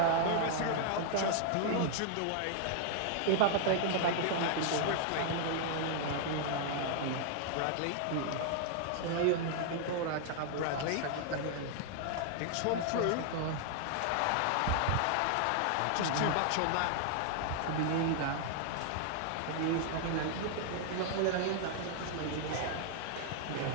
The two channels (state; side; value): different; both; correlation -0.01